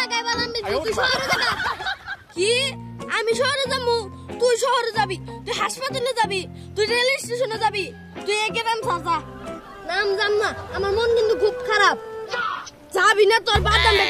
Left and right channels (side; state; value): both; identical; correlation 1.00